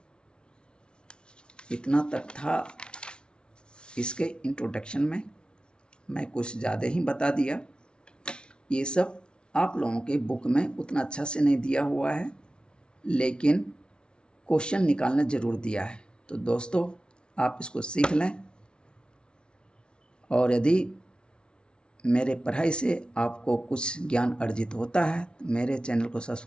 इतना तक था इसके इंट्रोडक्शन में, मैं कुछ ज़्यादा ही बता दिया। ये सब आप लोगों के बुक में उतना अच्छा से नहीं दिया हुआ है, लेकिन क्वेश्चन निकालना ज़रूर दिया है। तो दोस्तों आप इसको सीख लें, और यदि मेरे पढ़ाई से आपको कुछ ज्ञान अर्जित होता है तो मेरे चैनल को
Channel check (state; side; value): late; right; 0.056 ms